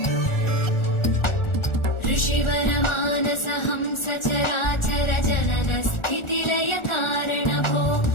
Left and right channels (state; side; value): late; right; 1.4 ms